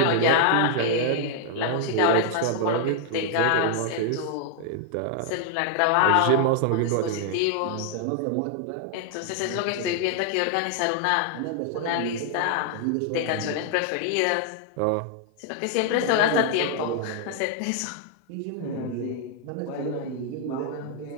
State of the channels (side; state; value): both; different; correlation 0.00